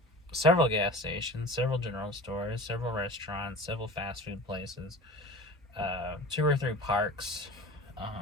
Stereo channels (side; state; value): both; normal; correlation 0.37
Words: several gas stations, several general stores, several restaurants, several fast food places, 2 or 3 parks.